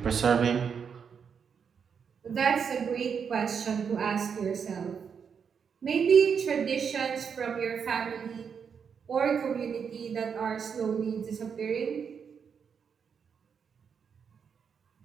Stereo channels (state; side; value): quieter; left; 6.7 dB